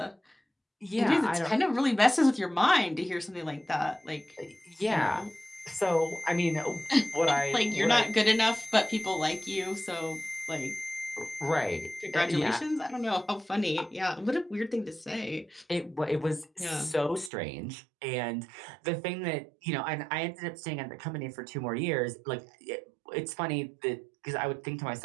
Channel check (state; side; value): drops out; left; at 17.3 s